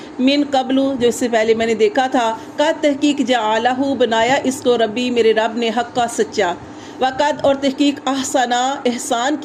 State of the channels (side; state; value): both; identical; correlation 1.00